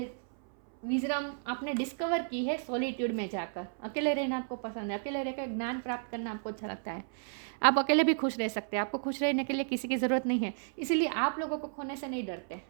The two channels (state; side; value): silent; left; 56 dB below the other